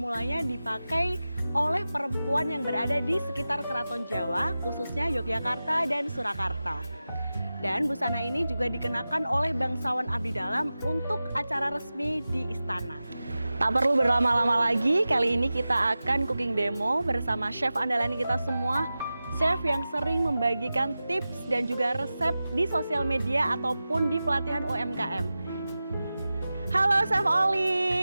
dipakai oleh perempuan yang berada di sekitar Keraton Jawa, khususnya Yogyakarta dan Surakarta. Dan busana ini juga dikenakan oleh bangsawan abdi dalam untuk acara resmi di istana. Tak perlu berlama-lama lagi, kali ini kita akan cooking demo bersama chef andalan kita semua. Chef yang sering membagikan tips dan juga resep di sosial media ataupun di pelatihan UMKM. Halo Chef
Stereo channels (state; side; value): inverted; both; correlation -0.95